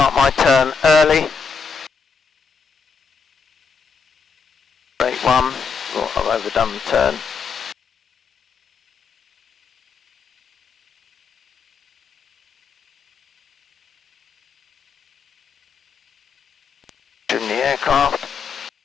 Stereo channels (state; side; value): quieter; right; 5.5 dB